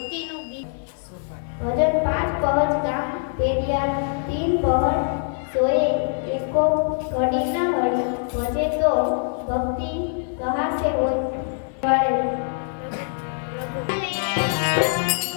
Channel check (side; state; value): right; silent; 63 dB below the other